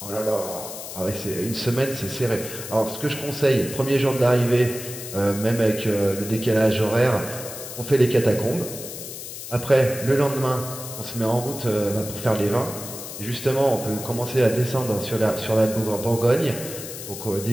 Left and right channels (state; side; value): noise; left; hiss, 10 dB below the sound